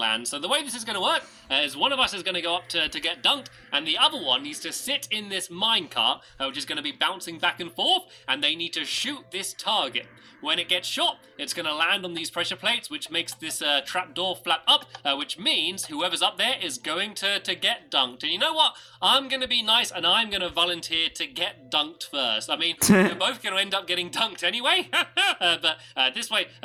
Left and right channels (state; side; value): identical; both; correlation 1.00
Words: So the way this is going to work is one of us is going to go up to get dunked, and the other one needs to sit in this minecart, which is going to be bouncing back and forth, and they need to shoot this target. When it gets shot, it's going to land on these pressure plates, which makes this trapdoor flap up, which means whoever's up there is going to get dunked. And you know what? I'm going to be nice, and I'm going to volunteer to get dunked first. I mean, we're both going to end up getting dunked anyway, but this way,